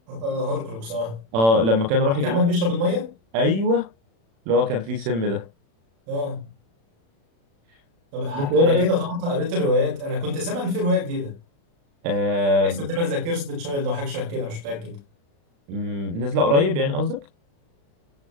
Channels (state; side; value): late; left; 35 ms